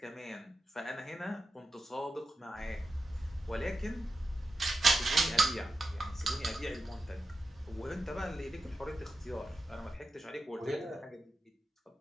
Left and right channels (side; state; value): both; normal; correlation 0.90